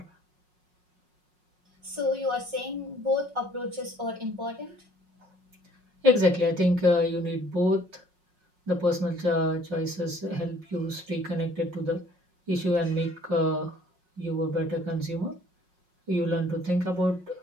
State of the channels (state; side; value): late; left; 5.5 ms